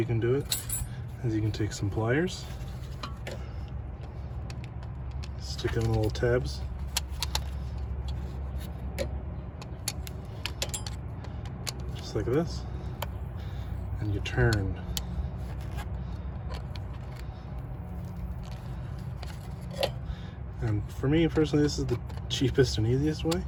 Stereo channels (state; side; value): identical; both; correlation 1.00